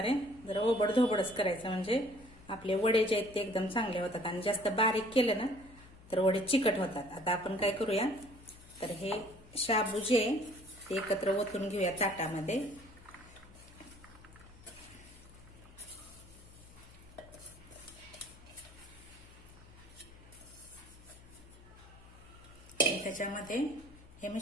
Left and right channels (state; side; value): noise; left; hum, 21 dB below the sound